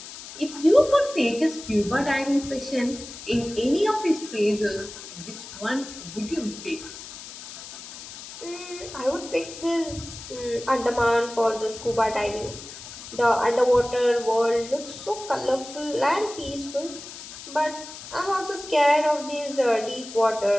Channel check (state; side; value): noise; left; hiss, 13 dB below the sound